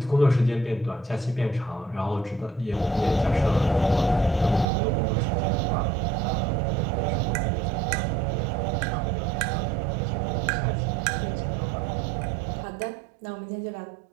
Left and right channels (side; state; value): left; drops out; at 4.7 s